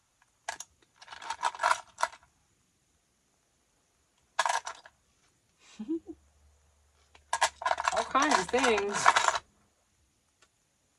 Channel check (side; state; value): both; identical; correlation 1.00